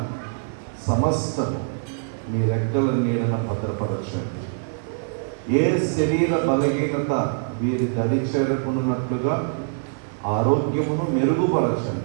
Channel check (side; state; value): left; silent; 57 dB below the other